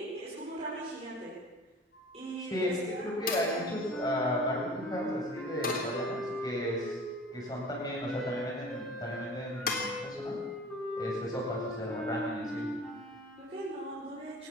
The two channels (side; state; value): both; normal; correlation 0.42